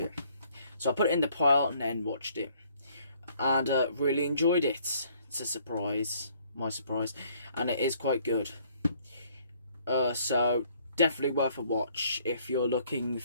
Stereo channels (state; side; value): inverted; both; correlation -0.63